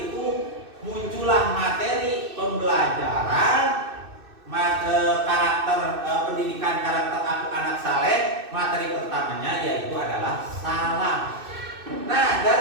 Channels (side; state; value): left; late; 2.6 ms